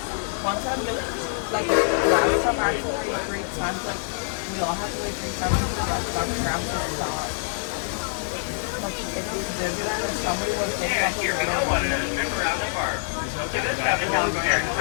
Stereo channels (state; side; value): silent; right; digital silence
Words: One time, like last time I actually wait 3 times, like we all have to wait 3 times to get our tram to stop. Like if we Disneyland and somebody was taking off Here we go, one another trip around the park. This traffic Calico Airport